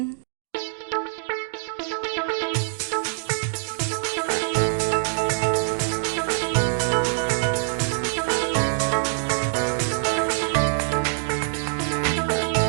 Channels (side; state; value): left; silent; digital silence